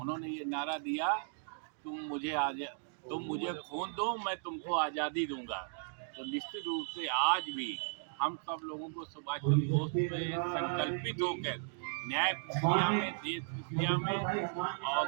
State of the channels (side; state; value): left; silent; digital silence